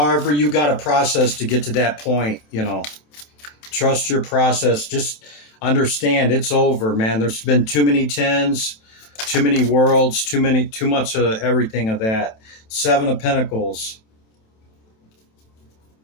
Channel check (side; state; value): right; late; 27 ms